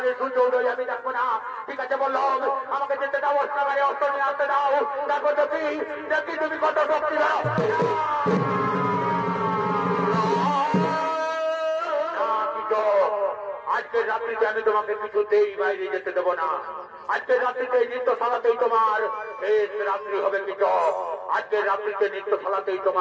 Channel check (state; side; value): identical; both; correlation 1.00